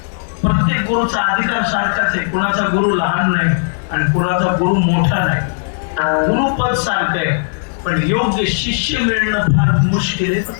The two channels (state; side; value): silent; right; digital silence